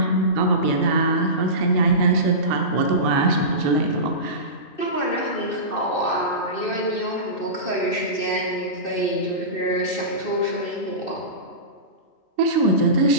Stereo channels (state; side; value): late; right; 2.6 ms